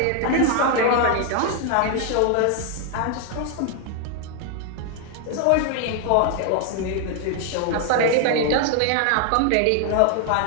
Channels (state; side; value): different; both; correlation 0.00